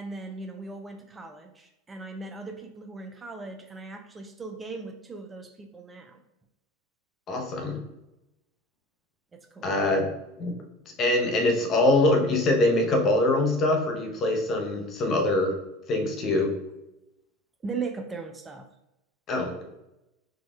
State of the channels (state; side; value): normal; both; correlation 0.41